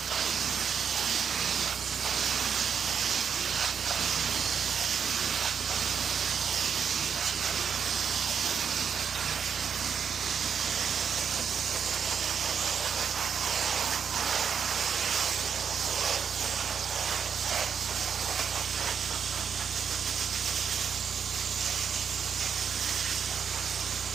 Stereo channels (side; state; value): left; quieter; 7.1 dB